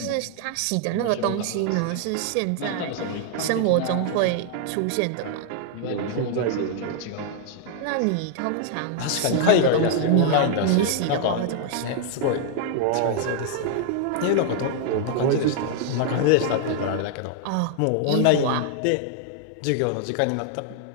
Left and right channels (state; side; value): different; both; correlation 0.00